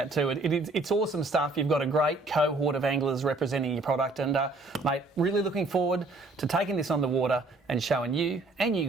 too. It's awesome stuff. You've got a great cohort of anglers representing your product, and mate, really looking forward to taking this on the water and showing you and you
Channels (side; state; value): left; quieter; 3.2 dB